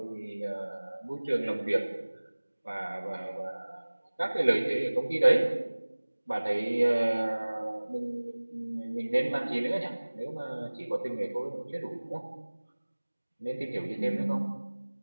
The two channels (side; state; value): both; inverted; correlation -1.00